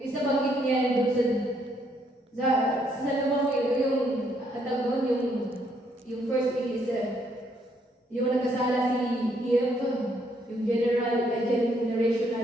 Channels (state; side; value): normal; both; correlation 0.71